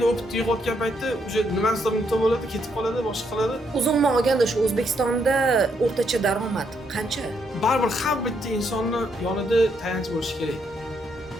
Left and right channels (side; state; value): both; normal; correlation 0.75